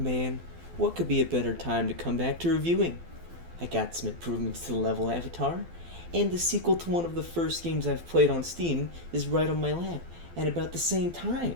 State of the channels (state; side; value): late; left; 12 ms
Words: Man, what could be a better time to come back to reviewing? I got some improvements to the level avatar, and the sequel to one of the first games I've played on Steam is right on my lap at about the same time.